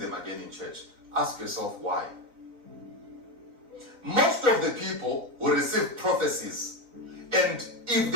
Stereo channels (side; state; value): left; late; 4.0 ms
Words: again in church. Ask yourself why. Most of the people will receive prophecies. And if